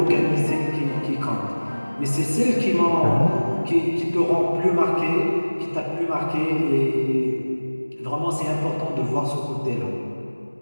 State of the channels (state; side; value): inverted; both; correlation -1.00